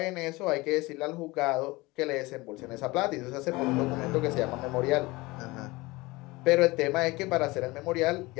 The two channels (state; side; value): quieter; right; 22.1 dB